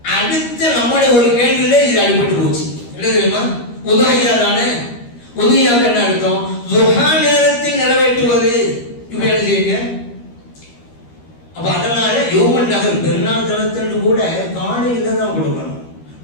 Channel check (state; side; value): late; right; 13 ms